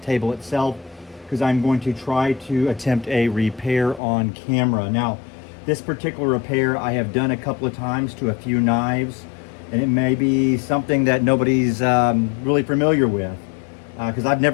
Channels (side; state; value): right; drops out; at 4.0 s